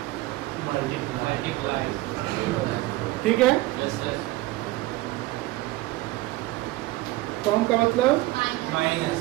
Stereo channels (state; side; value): quieter; left; 18.7 dB